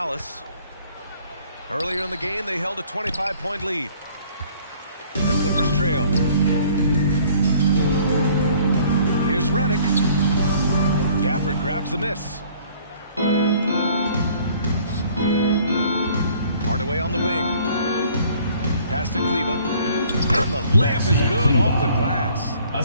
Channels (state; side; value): inverted; both; correlation -0.56